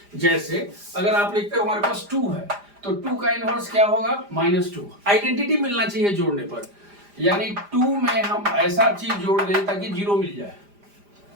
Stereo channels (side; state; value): left; late; 5.0 ms